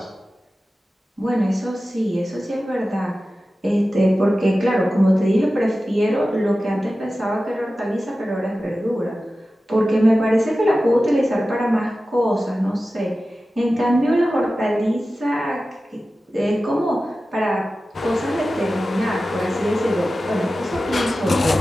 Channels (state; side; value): normal; both; correlation 0.95